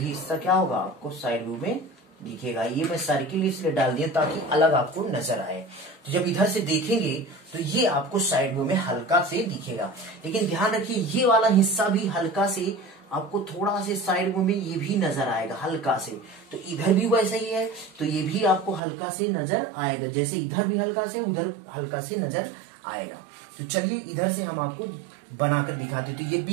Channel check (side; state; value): left; drops out; at 18.8 s